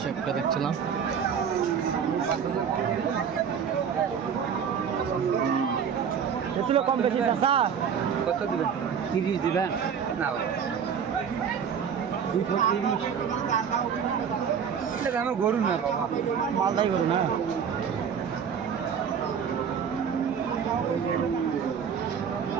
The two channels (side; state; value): left; quieter; 7.3 dB